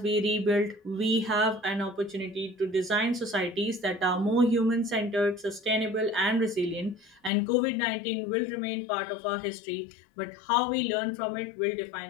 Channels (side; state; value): right; drops out; at 7.3 s